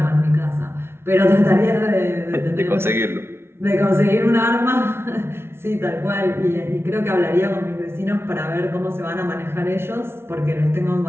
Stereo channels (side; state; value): left; late; 0.12 ms